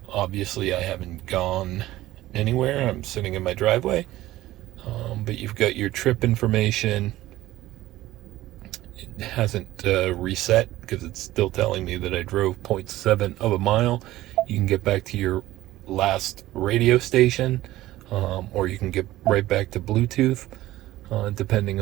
Obviously, I haven't gone anywhere. I'm sitting in my driveway. But you've got your trip information. It hasn't reset because it's still telling me that I drove 0.7 of a mile. You can get back to your last radio station. Or you can get right back to Bluetooth, depending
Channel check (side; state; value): left; quieter; 16.0 dB